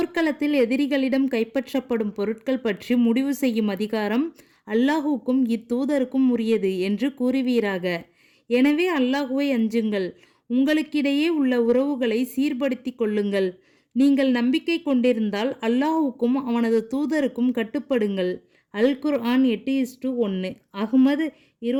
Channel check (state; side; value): identical; both; correlation 1.00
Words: எதிரிகளிடம் கைப்பற்றப்படும் பொருட்கள் பற்றி முடிவு செய்யும் அதிகாரம் அல்லாஹுக்கும் இத்தூதருக்கும் உரியது என்று கூறுவீராக. எனவே அல்லாஹுவை அஞ்சுங்கள். உங்களுக்கிடையே உள்ள உறவுகளை சீர்படுத்தி கொள்ளுங்கள். நீங்கள் நம்பிக்கை கொண்டிருந்தால் அல்லாஹுக்கும் அவனது தூதருக்கும் கட்டுப்படுங்கள். அல் குர்ஆன் 8:1. அஹ்மது